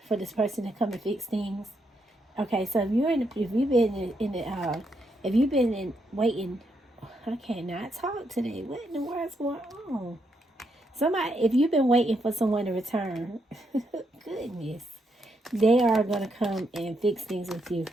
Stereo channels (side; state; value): both; normal; correlation 0.79